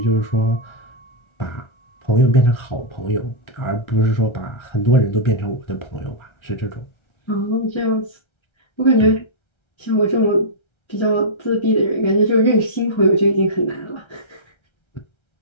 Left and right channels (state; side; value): late; right; 1.3 ms